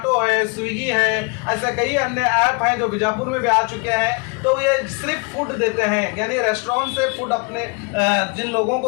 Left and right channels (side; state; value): right; quieter; 31.4 dB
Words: है, स्विगी है, ऐसे कई अन्य ऐप हैं जो बीजापुर में भी आ चुके हैं। तो ये सिर्फ फूड देते हैं, यानी रेस्टोरेंट से फूड अपने जिन लोगों